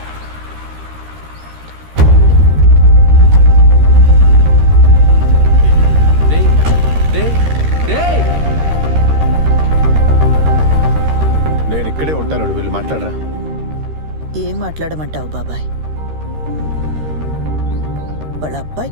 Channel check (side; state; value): left; late; 13 ms